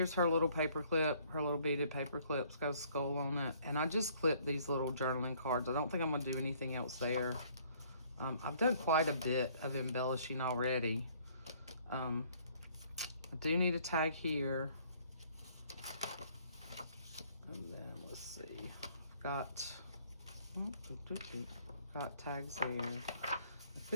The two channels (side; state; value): both; inverted; correlation -0.60